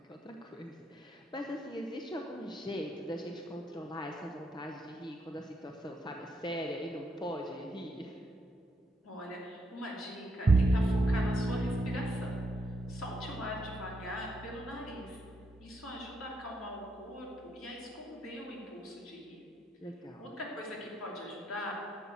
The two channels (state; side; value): normal; both; correlation 0.78